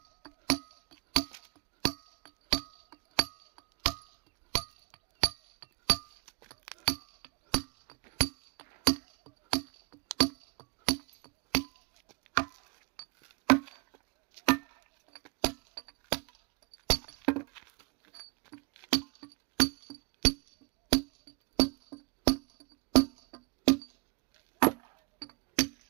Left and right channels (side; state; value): left; quieter; 27.6 dB